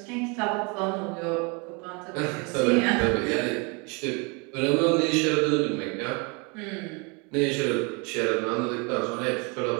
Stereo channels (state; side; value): quieter; left; 30.6 dB